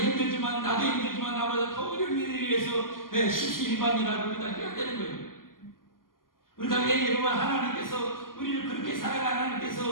나도 힘들지만 나보다 더 어려운 일을 위해서 십시일반이라고 우리가 해야 되는 거예요. 우리가 왜 여러분 하나님께서 우리를 그렇게 사랑하는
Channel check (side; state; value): right; late; 0.91 ms